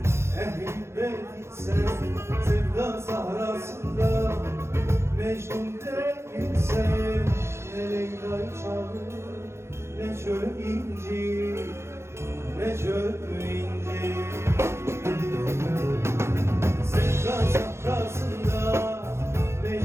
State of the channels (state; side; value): late; left; 0.13 ms